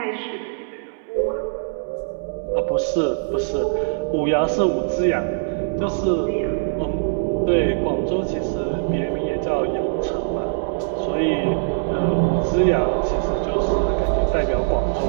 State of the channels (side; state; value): left; silent; 64 dB below the other